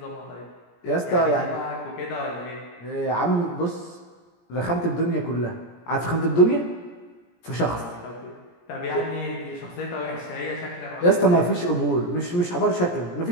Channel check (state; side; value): late; right; 17 ms